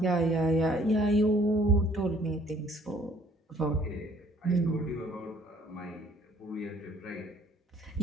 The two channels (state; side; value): normal; both; correlation 0.59